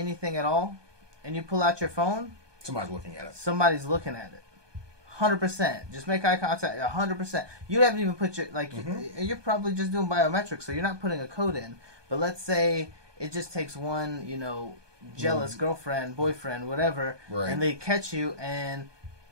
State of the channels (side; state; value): left; late; 1.2 ms